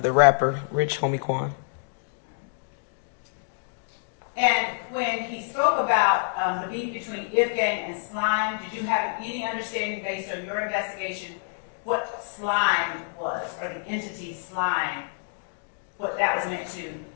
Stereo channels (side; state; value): right; silent; digital silence